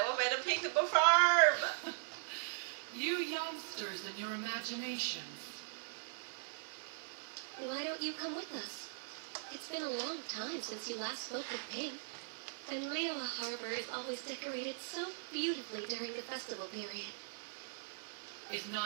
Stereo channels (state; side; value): silent; left; digital silence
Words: want Madam Ping to perform. You youngsters and your imaginations. Why don't you come with us? It's been a long time since you last spoke with Ping, and Leola Harbor is always decorated so beautifully during the festival period. Is